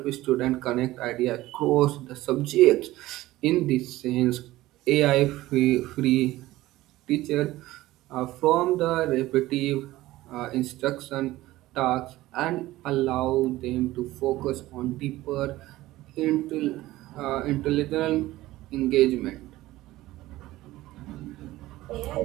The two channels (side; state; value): left; quieter; 17.0 dB